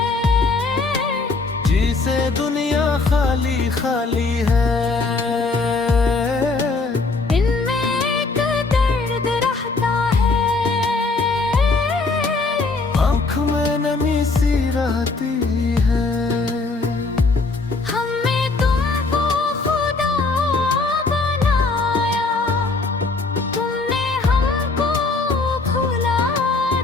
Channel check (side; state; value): right; quieter; 3.8 dB